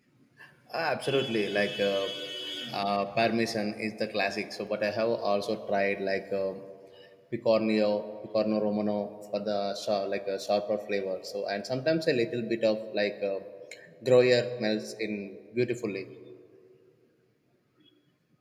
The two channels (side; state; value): both; identical; correlation 1.00